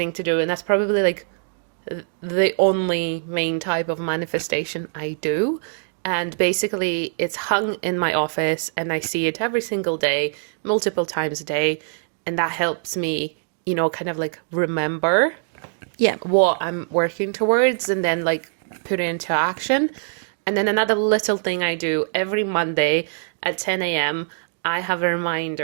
to do. And that's probably like the only main type of manifestation I do. And basically, it's hung in my office and I see it every single day, multiple times a day. And that helps me, kind of like remember Yeah. what I'm working towards and then like put it into action. And then another little thing I do every Monday at 10 a.m., I have a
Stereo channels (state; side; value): silent; left; digital silence